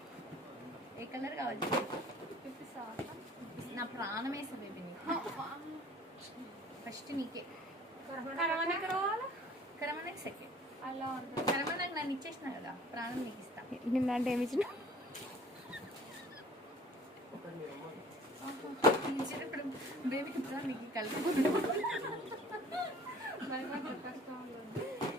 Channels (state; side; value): normal; both; correlation 0.51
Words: ఏ కలర్ కావాలి? నా ప్రాణం వేసా బేబీ నీకు. ఫస్ట్ నీకే కరమనకి సెకండ్. కరమనకి నన్ను ఇచ్చేసిన కదా, ప్రాణం నీకు ఇస్తా. నిన్న అంటే ఏమి ఇచ్చిన? ఇప్పుడు బేబీకి ఇస్తా నీకు కలిపి